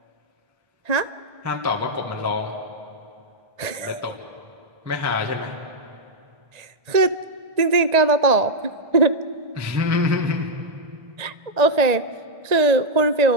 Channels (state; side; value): late; left; 1.8 ms